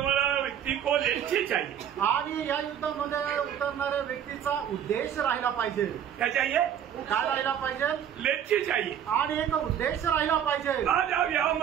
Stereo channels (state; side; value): quieter; left; 9.4 dB